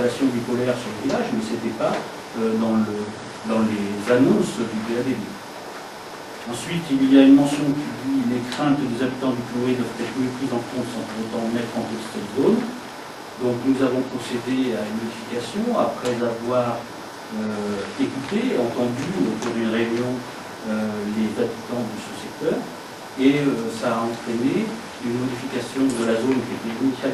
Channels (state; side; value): identical; both; correlation 1.00